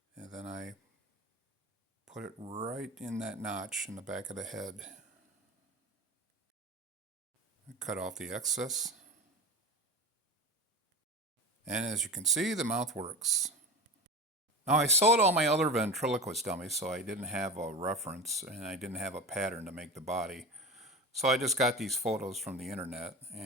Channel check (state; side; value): normal; both; correlation 0.29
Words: and then I put it right in that notch in the back of the head. I cut off the excess. And as you can see, the mouth works. Now I sold all my other ventriloquist dummies, so I didn't have a reference and I didn't have a pattern to make the body. So I just got these photos from the internet